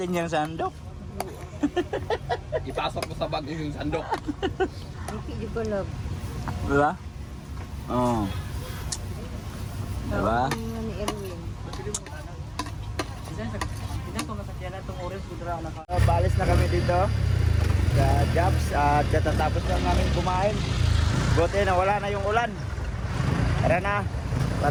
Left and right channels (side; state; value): both; identical; correlation 1.00